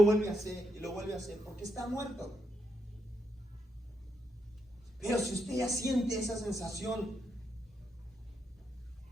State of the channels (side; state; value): both; normal; correlation 0.81